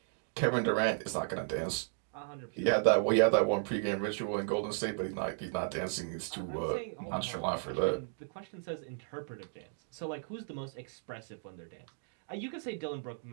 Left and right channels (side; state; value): left; silent; digital silence